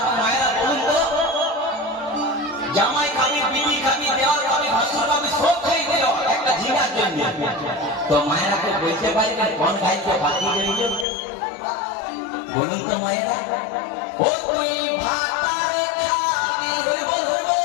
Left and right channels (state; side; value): drops out; right; at 11.1 s